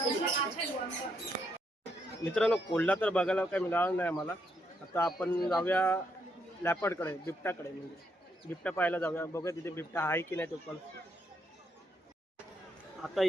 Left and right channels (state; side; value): normal; both; correlation 0.76